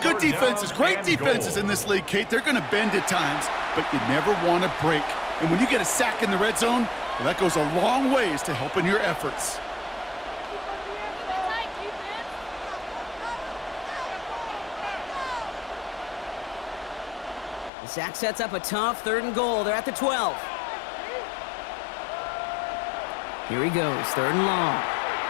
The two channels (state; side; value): drops out; right; at 17.7 s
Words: good 3rd defenses, down great and defenses goal. in this league, Kate, they're going to bend at times, but you never want to break. And when you get a sack in the red zone, well, that goes a long ways to helping your efforts. Zach sets up a tough 3rd and goal. They're at the 12. Here he goes, 3rd and long.